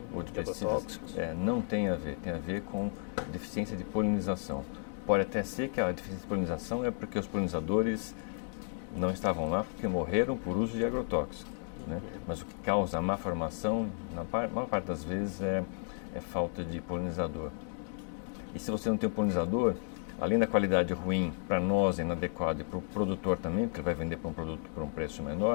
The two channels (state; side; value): silent; right; 56 dB below the other